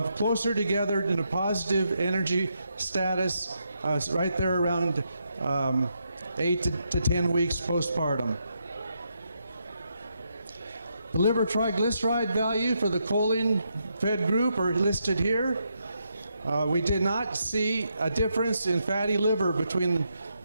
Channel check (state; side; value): inverted; both; correlation -0.80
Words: closer together in a positive energy status right there around 8 to 10 weeks postpartum. The liver triglyceride value for the choline-fed group are listed here. We did not see a difference in fatty liver between